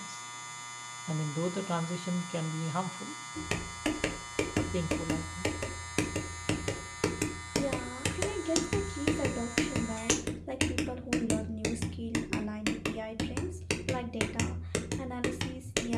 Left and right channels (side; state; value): both; identical; correlation 1.00